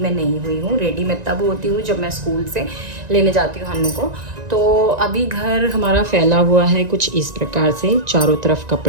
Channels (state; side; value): late; left; 1.9 ms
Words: नहीं हुई हूँ। रेडी मैं तब होती हूँ जब मैं स्कूल से लेने जाती हूँ हन्नू को। तो अभी घर हमारा फैला हुआ है कुछ इस प्रकार से, चारों तरफ